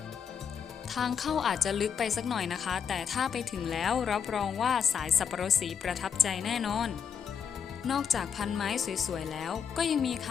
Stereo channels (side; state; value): right; quieter; 7.2 dB